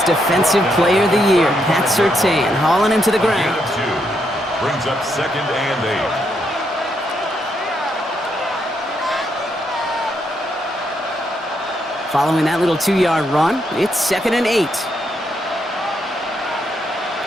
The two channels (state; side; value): normal; both; correlation 0.78